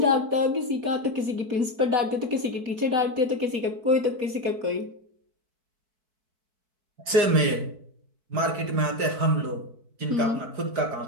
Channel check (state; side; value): late; left; 4.6 ms